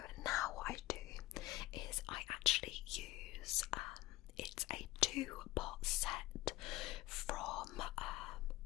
now what I do is I actually use it's a 2-pot set from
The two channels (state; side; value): quieter; right; 18.0 dB